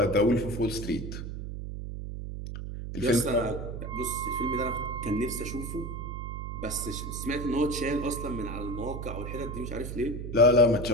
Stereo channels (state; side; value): noise; right; hum, 7 dB below the sound